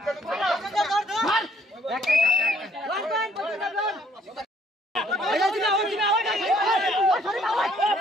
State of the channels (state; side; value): normal; both; correlation 0.64